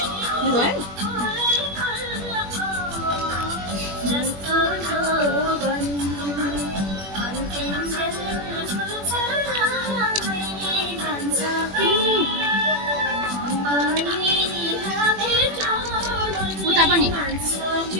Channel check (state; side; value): late; left; 21 ms